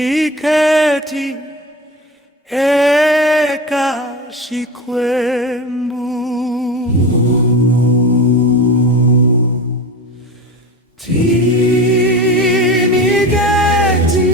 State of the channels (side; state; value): both; normal; correlation 0.28